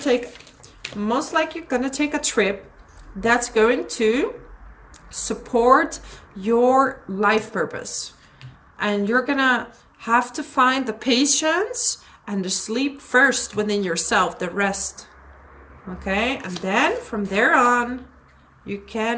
most likely you're gonna take a trip that's going to support your life purpose. And you're gonna have to find the patience and the sleep first within yourself, the rest. Okay, and then from there on, you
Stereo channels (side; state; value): both; identical; correlation 1.00